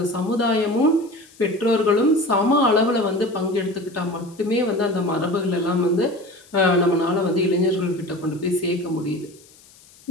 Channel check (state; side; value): noise; left; hiss, 26 dB below the sound